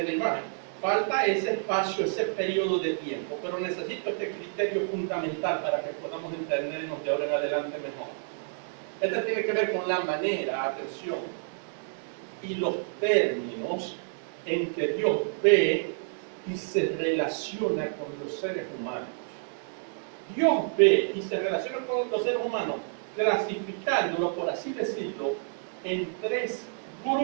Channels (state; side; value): silent; left; digital silence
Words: la imagen. Falta ese espacio, ese periodo de tiempo, pero necesito este criterio fundamental para que podamos entendernos de ahora en adelante mejor. Este tiene que ver con la manera, atención, y los términos en que Dios ve y se relaciona con los seres humanos. Dios ve y se relaciona con los seres humanos clasificándolos, por así decirlo, en 3